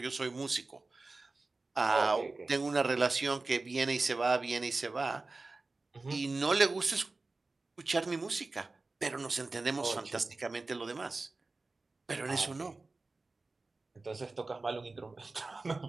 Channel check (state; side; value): quieter; left; 3.5 dB